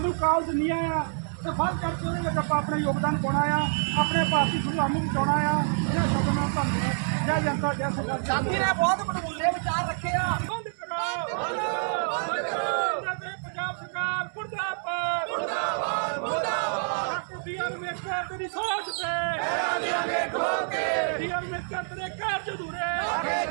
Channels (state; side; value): silent; left; digital silence